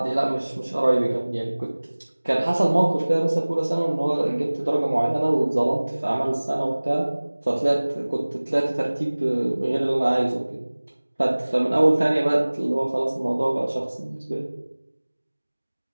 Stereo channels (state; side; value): inverted; both; correlation -1.00